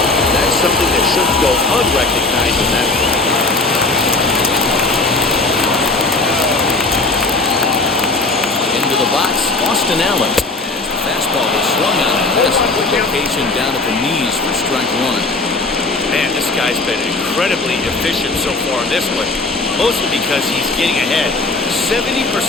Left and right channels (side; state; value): right; quieter; 3.3 dB